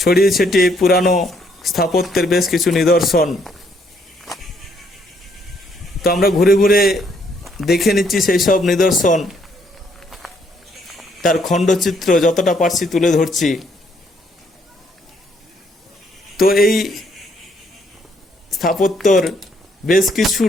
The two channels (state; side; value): normal; both; correlation 0.69